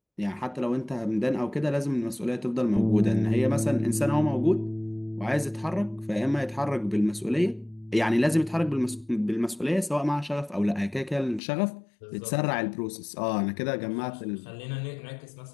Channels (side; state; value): right; drops out; at 11.4 s